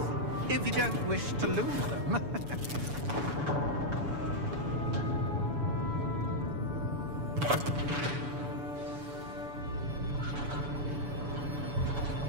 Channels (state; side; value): late; left; 7.0 ms